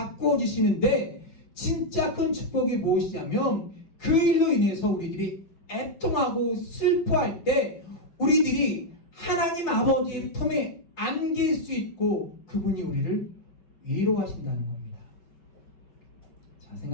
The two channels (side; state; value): right; late; 5.2 ms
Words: 주시는데, 진짜 큰 축복이 무엇이냐면 그 일로 인해서 우리들이 애통하고 슬퍼할 때 우리들이 하나님 아버지의 품에 안길 수 있고 그분이 우리를 위로하신다는 겁니다. 자,